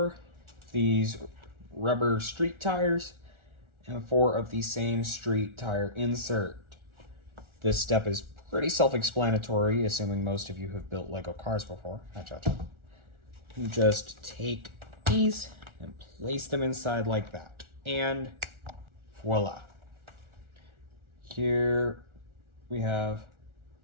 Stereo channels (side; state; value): left; late; 1.4 ms